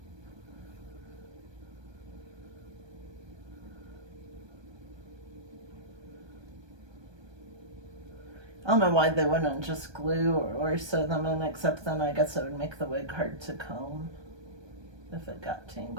I don't know why they wouldn't just glue or sew them in, except then I guess it would make the wig hard to comb if it got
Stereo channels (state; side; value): late; left; 1.3 ms